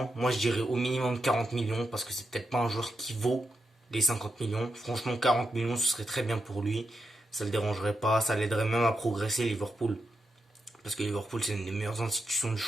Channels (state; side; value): normal; both; correlation 0.85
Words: Moi, je dirais au minimum 40 millions parce que c'est peut-être pas un joueur qui vaut les 50 millions. Franchement, 40 millions, ce serait très bien pour lui. Ça le dérangerait pas. Ça l'aiderait même à progresser, Liverpool. Parce que Liverpool, c'est une des meilleures institutions du